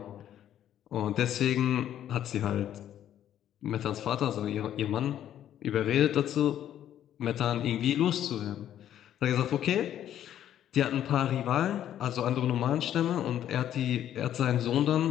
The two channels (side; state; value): right; quieter; 11.0 dB